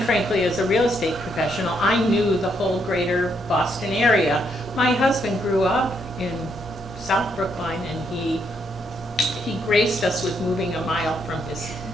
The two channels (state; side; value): normal; both; correlation 0.75